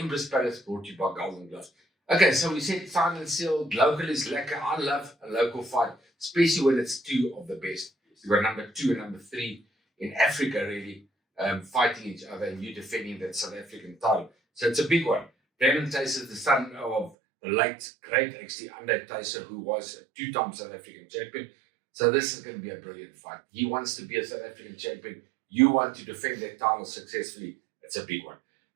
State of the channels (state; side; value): drops out; left; at 17.1 s